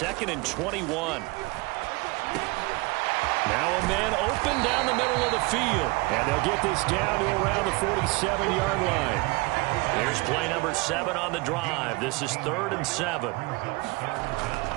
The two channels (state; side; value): quieter; left; 25.3 dB